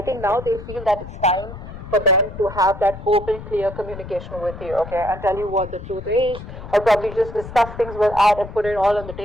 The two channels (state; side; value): noise; left; rumble, 12 dB below the sound